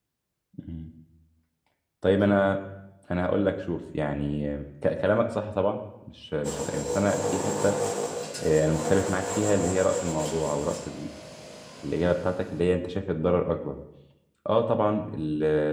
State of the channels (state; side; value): identical; both; correlation 1.00